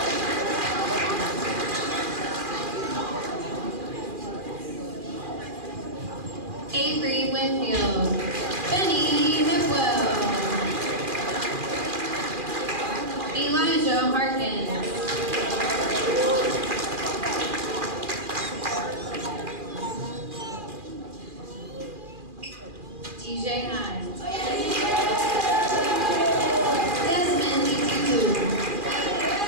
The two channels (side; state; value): left; late; 2.4 ms